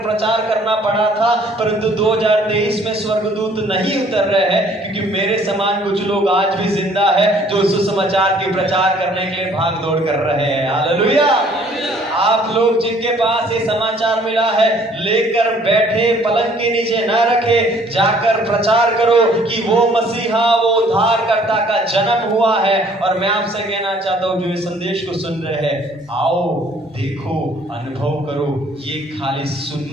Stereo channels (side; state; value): both; normal; correlation 0.59